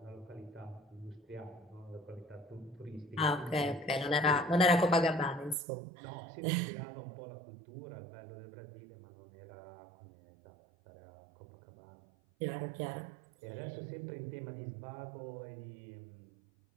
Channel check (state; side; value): drops out; left; at 5.6 s